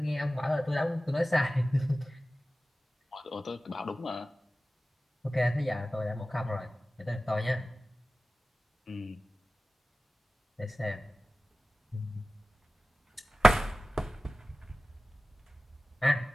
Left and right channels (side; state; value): both; normal; correlation 0.96